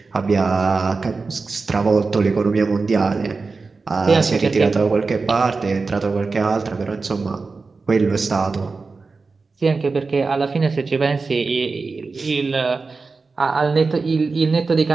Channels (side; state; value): left; quieter; 4.2 dB